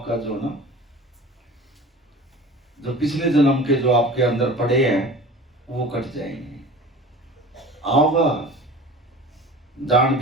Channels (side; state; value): both; normal; correlation 0.39